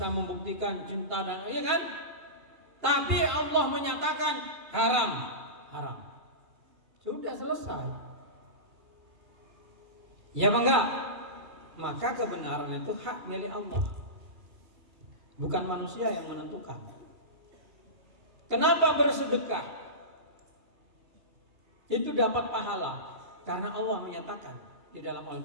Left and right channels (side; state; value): left; late; 2.3 ms